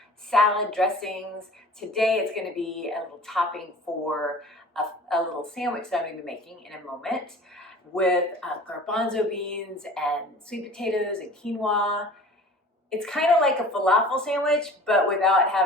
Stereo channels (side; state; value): both; normal; correlation 0.44